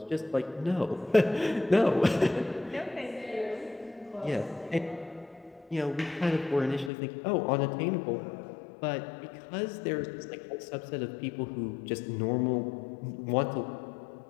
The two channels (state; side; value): drops out; right; at 6.9 s